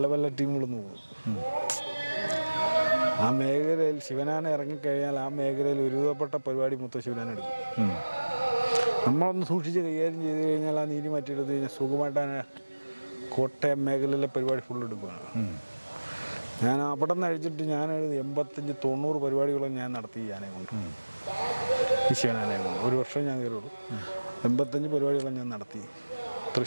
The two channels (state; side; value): inverted; both; correlation -1.00